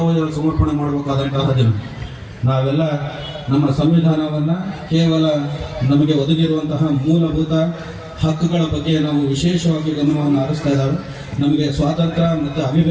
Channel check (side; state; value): both; identical; correlation 1.00